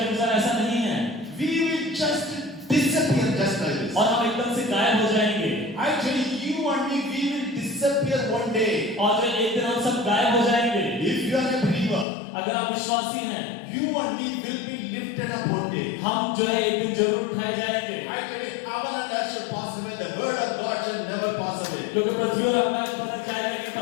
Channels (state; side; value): drops out; right; at 12.1 s